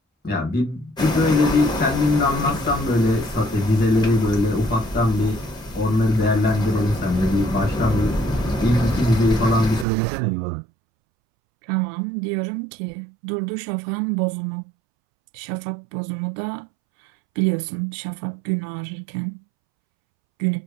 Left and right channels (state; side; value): drops out; left; at 9.9 s